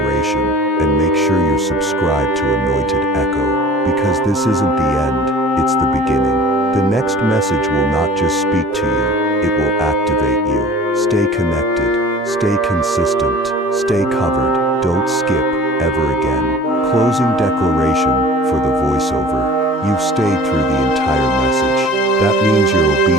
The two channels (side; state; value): both; normal; correlation 0.44